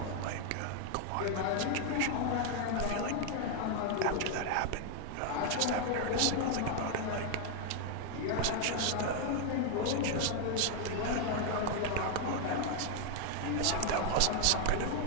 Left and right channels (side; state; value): both; different; correlation 0.00